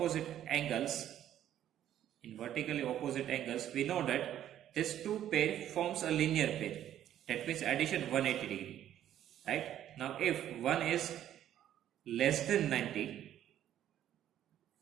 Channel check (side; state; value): left; quieter; 11.3 dB